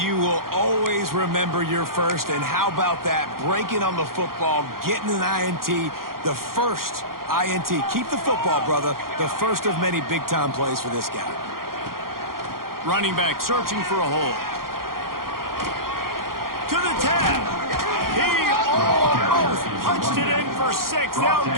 will always remember your first. And how about that? Breaking on the football, getting an INT, the first INT. Keep the football, brother. The first of many big-time plays for this guy. Running back searching for a hole. To the 10. He almost punched it in for 6. They'll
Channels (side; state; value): left; late; 0.92 ms